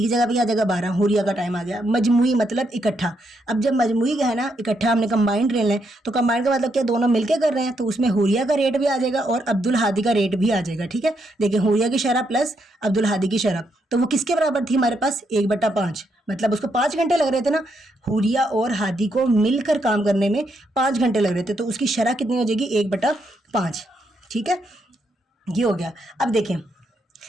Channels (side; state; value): both; normal; correlation 0.78